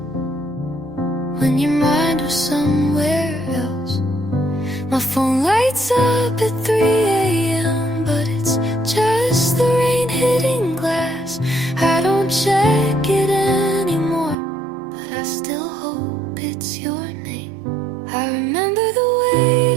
when your mind was somewhere else. My phone lights up at 3 a.m., but it's just the rain hitting glass. I don't check it anymore, but I still hope it's your name. I remember the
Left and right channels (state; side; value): drops out; left; at 14.4 s